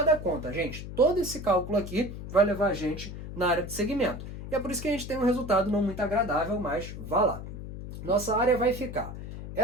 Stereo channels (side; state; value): left; noise; hum, 10 dB below the sound